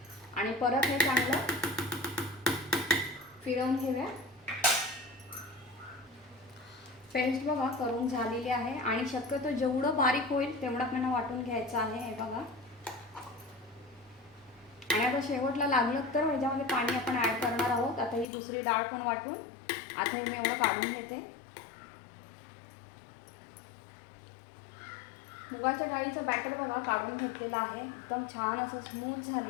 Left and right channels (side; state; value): right; drops out; at 18.2 s